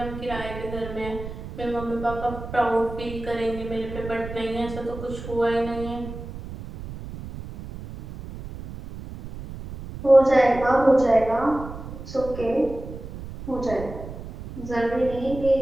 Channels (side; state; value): right; noise; rumble, 11 dB below the sound